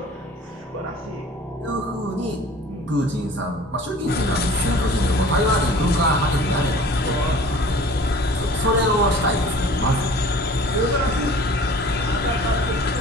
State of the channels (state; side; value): normal; both; correlation 0.46